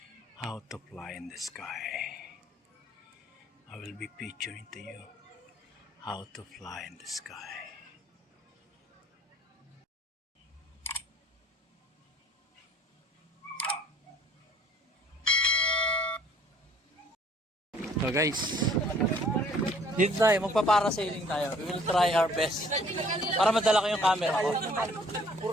How to fly in the sky. I will be picturing to you how to fly in the sky. So guys, dito tayo, magpa-parasailing tayo. We will try our best para madala ko yung camera ko.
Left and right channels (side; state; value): both; normal; correlation 0.57